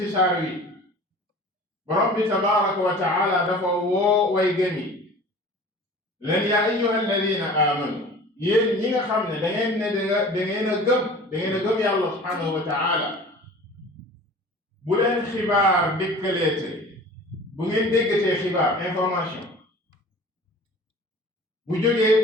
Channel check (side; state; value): both; normal; correlation 0.43